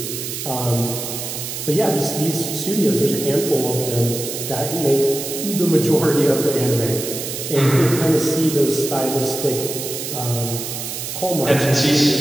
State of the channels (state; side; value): noise; right; hiss, 6 dB below the sound